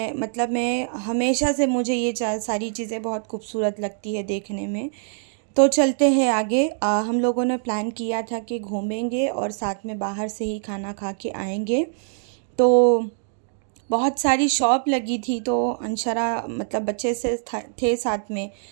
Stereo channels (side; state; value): left; silent; digital silence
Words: हमेशा से मुझे ये सारी चीज़ें बहुत खूबसूरत लगती है देखने में। तो चलते हैं आगे। हम लोगों ने प्लान किया था कि घूमेंगे और साथ में बाहर से ही खाना खा के आएंगे। तो बहुत सारी शॉप लगी थी, तो अंशरा मतलब बच्चे से थे साथ में,